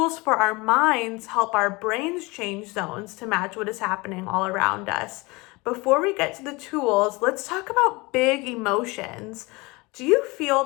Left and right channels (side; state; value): right; quieter; 24.6 dB